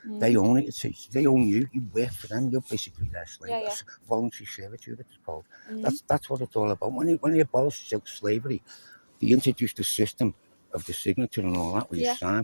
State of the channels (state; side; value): inverted; both; correlation -1.00